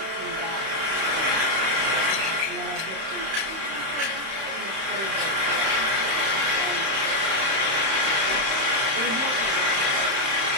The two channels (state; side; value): late; left; 31 ms